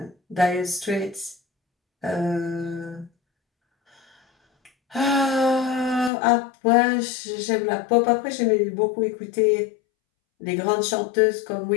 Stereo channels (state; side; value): drops out; right; at 6.1 s